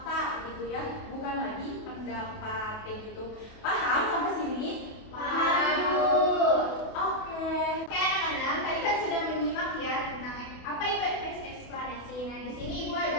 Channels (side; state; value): right; late; 28 ms